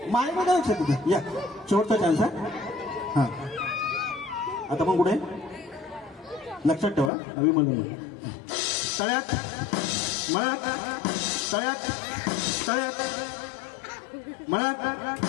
माय बघा लक्षात तिथं या शेवटचा चान्स आहे. हा आता पण कुठे लक्षात ठेवा. अभिमन्यू तळ्यात मळ्यात तळ्यात तळ्यात मळ्यात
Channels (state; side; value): drops out; right; at 7.1 s